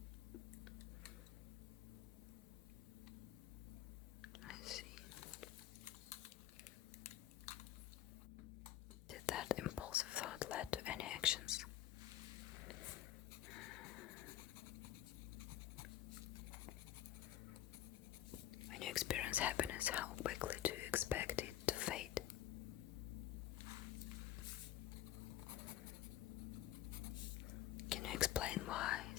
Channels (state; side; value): quieter; right; 12.9 dB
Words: that impulsive thought led to any actions? When you experience happiness, how quickly do you expect it to fade? Can you explain why